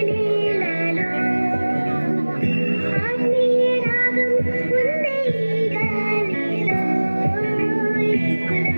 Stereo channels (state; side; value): inverted; both; correlation -1.00